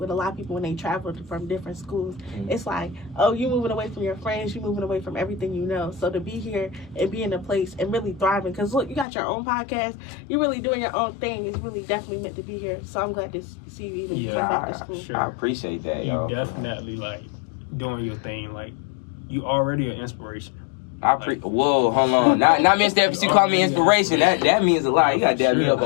a lot of people when they travel from different schools, it's like, oh, you moving away from your friends, you moving away from everything you know. So to be here and be in a place and really thriving, because look, you got your own podcast, you're really doing your own thing. It's really definitely meant to be here. So I'm glad to see you even come back to school. Sure. I appreciate that. You definitely doing your thing. You already an inspiration. Whoa, hold on. Not Mr. Epps, you call me inspiration. That means a lot. You gotta dab me up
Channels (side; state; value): right; drops out; at 9.1 s